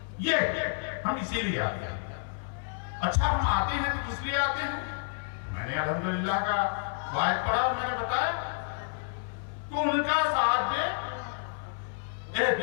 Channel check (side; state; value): right; silent; 58 dB below the other